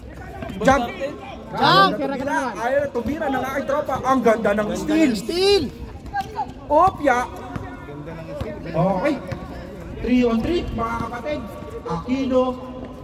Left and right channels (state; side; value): identical; both; correlation 1.00